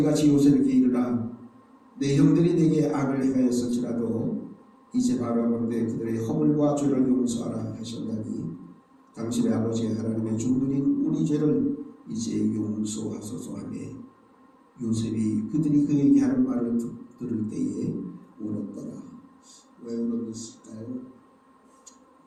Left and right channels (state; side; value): identical; both; correlation 1.00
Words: 요셉에게 이르라. 내 형들이 내게 악을 행하였을지라도 이제 바라보는데 그들의 허물과 죄를 용서하라 하셨나니 당신의 아버지 하나님의 종들인 우리 죄를 이제 용서하소서 하며 요셉이 그들이 그에게 하는 말을 들을 때에 울었더라. 왜 울었을까요?